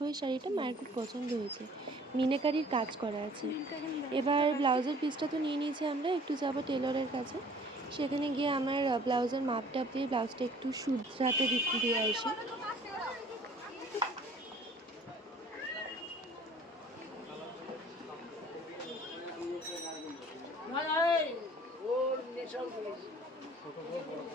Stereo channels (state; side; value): normal; both; correlation 0.52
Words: এই শাড়িটা মায়ের খুব পছন্দ হয়েছে, মিনাকারির কাজ করা আছে। এবার ব্লাউজের পিসটা তো নিয়ে নিয়েছি, আমরা একটু যাবো টেলরের কাছে। সেখানে গিয়ে আমার ব্লাউজের মাপটাপ দিয়ে ব্লাউজটা একটু শুধরাতে দিয়ে আসি।